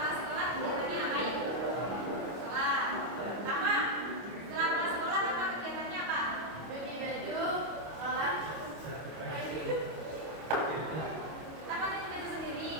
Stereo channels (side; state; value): left; late; 25 ms